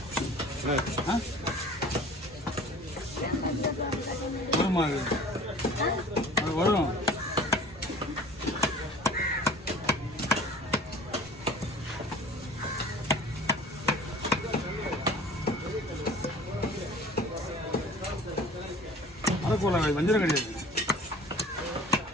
வருமா? அது வரும். அரைக்கோளா வஞ்சிரம் கிடையாது.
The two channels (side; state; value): both; normal; correlation 0.45